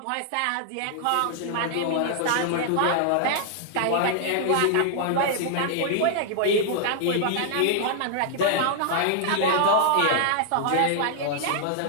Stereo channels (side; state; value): both; different; correlation -0.01